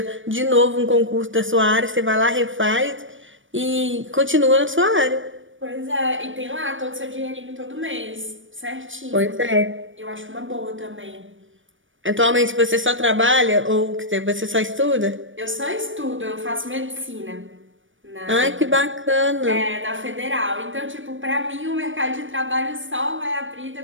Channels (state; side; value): late; left; 0.57 ms